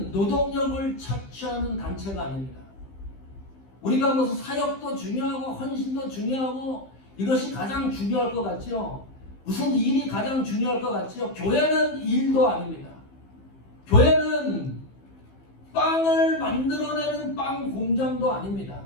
노동력을 착취하는 단체가 아닙니다. 우리가 무슨 사역도 중요하고 헌신도 중요하고 이것이 가장 중요할 것 같죠? 무슨 일이 가장 중요할 것 같죠? 교회는 일도 아닙니다. 교회는 빵을 만들어내는 빵 공장도 아닙니다.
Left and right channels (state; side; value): late; right; 15 ms